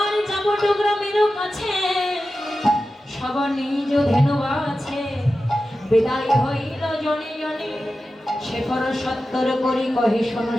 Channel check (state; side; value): normal; both; correlation 0.93